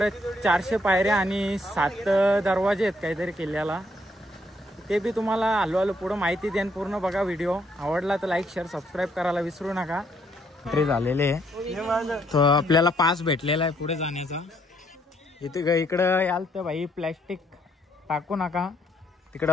400 पायऱ्या आणि 7 दरवाजे आहेत काहीतरी किल्ल्याला. ते बी तुम्हाला हळूहळू पुढं माहिती देईन. पूर्ण बघा व्हिडिओ. आवडला तर लाईक शेअर सबस्क्राईब करायला विसरू नका. एंट्री झालेले तो आपल्याला पास भेटलेला आहे पुढे जाण्याचा. इकडं याल तर भाई प्लॅस्टिक टाकू नका.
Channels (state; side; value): normal; both; correlation 0.70